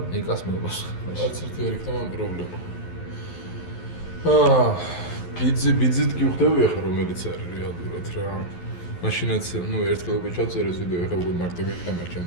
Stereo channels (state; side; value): late; right; 11 ms